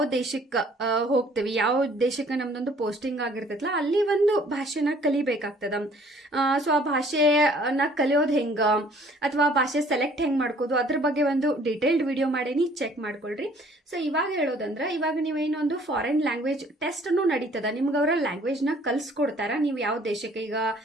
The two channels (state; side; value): normal; both; correlation 0.57